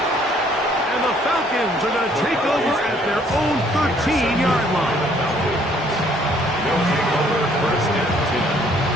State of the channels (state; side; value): normal; both; correlation 0.63